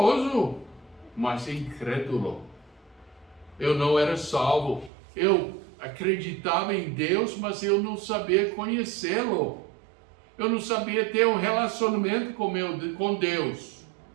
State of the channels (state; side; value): drops out; left; at 4.9 s